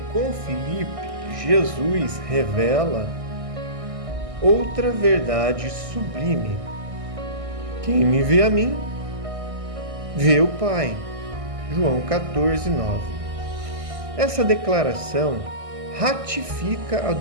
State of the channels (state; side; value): late; left; 1.6 ms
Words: com Filipe, Jesus revela outra verdade sublime. Quem me vê a mim, vê o Pai. João 14,9. Essa declaração ratifica a